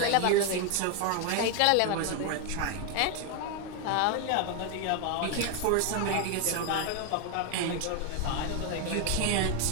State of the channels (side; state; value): both; different; correlation 0.01